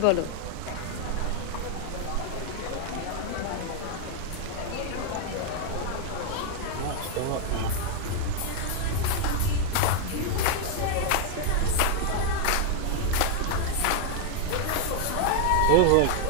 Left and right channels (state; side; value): different; both; correlation 0.00